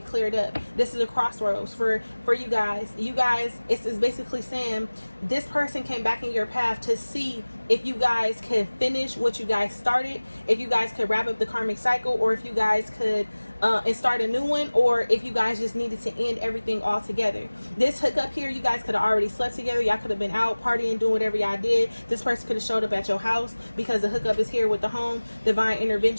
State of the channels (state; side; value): inverted; both; correlation -1.00